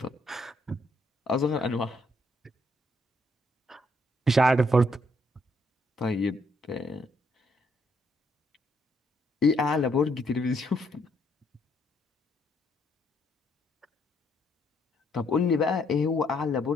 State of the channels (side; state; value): both; normal; correlation 0.71